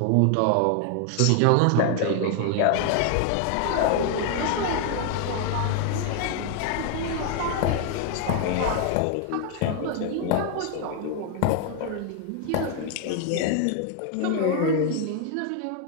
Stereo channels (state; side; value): different; both; correlation 0.00